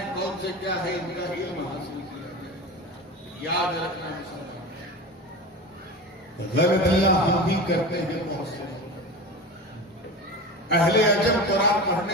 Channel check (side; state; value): both; normal; correlation 0.29